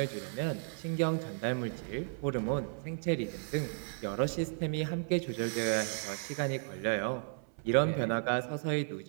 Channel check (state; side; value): silent; left; 55 dB below the other